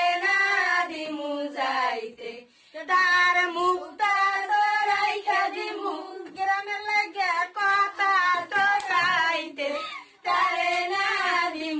না দিমু যাইতে তার মুখটা রাইখা দিমু গ্রামে লাগে কথা তো গাইতে তারে না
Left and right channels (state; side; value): identical; both; correlation 1.00